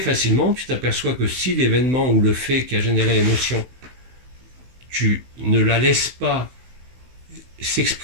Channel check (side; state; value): left; late; 16 ms